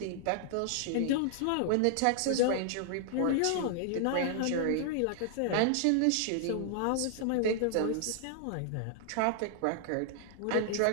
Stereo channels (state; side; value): different; both; correlation -0.01